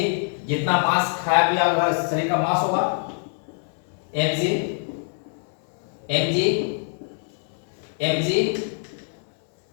जितना मांस खाया पिया अगर शरीर का मांस होगा, mg mg mg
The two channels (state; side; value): silent; right; 62 dB below the other